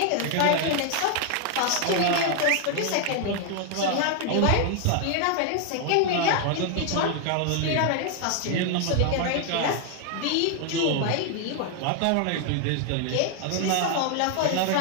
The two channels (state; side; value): different; both; correlation 0.00